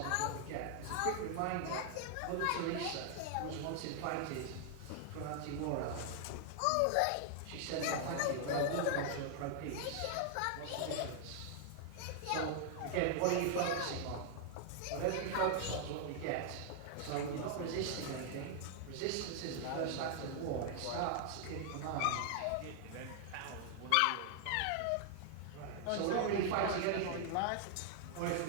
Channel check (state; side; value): different; both; correlation 0.00